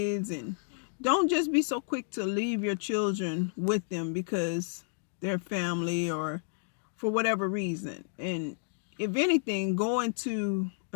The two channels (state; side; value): silent; right; digital silence